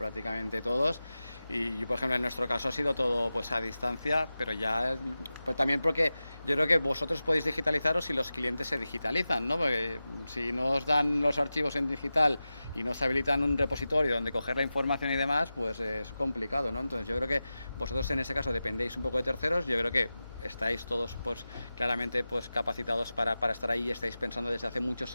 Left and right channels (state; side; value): inverted; both; correlation -0.94